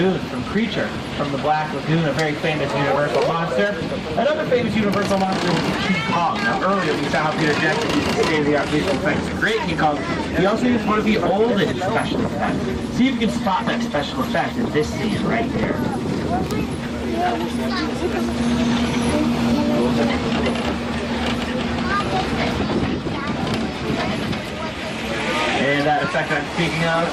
from Creature. From the Black Lagoon, a very famous Universal monster. Another famous Universal monster is King Kong. Now earlier we saw how Peter Jackson used state-of-the-art visual effects to create King Kong. He also used one of the oldest special effects. See if you can spot that special effect in this scene right here. And that effect I'm speaking of,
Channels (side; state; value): both; identical; correlation 1.00